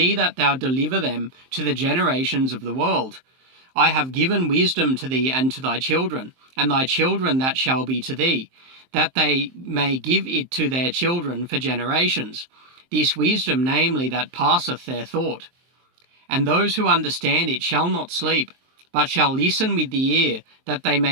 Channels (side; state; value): left; late; 23 ms